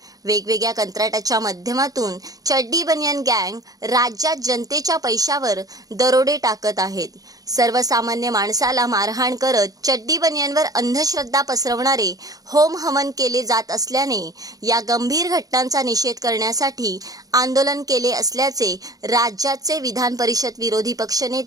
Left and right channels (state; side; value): late; left; 0.18 ms